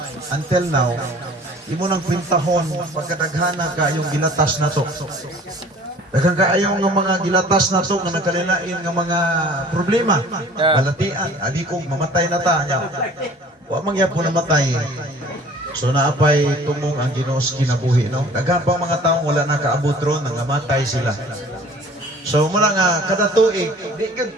until now, imo nang pintahon pagkadaghana ka yung gilatas na to. Daghang kaayo nga mga gilatas na to nga nagkalilain nga mga problema. Balatian, adi kong mamatay na ta nya. Wa man gyapon namatay. So naapay tumong ang Ginoo sa kinabuhi, no? Daghang pang mga tawo wala nakaabot ron nga matay sila. So mula nga kada tuig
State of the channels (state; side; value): normal; both; correlation 0.49